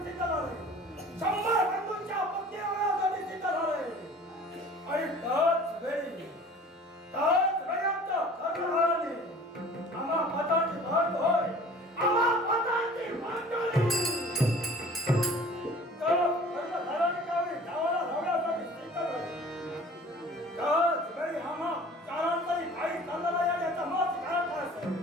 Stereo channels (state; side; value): normal; both; correlation 0.46